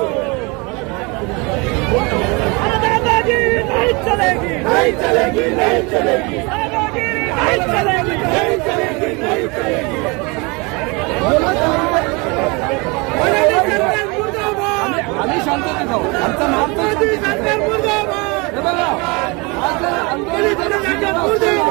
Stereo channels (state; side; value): quieter; left; 28.0 dB